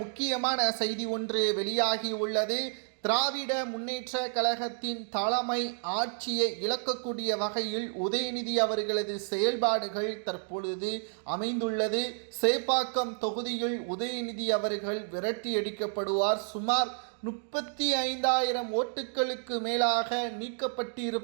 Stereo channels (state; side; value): silent; left; digital silence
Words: முக்கியமான செய்தி ஒன்று வெளியாகி உள்ளது. திராவிட முன்னேற்ற கழகத்தின் தலைமை ஆட்சியை இழக்கக்கூடிய வகையில் உதயநிதி அவர்களது செயல்பாடுகள் தற்பொழுது அமைந்துள்ளது. சேப்பாக்கம் தொகுதியில் உதயநிதி அவர்கள் விரட்டியடிக்கப்படுவார். சுமார் 35,000 ஓட்டுகளுக்கு மேலாக